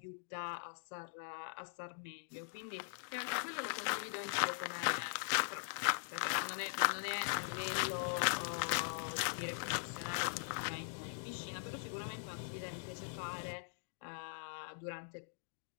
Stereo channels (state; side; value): silent; right; digital silence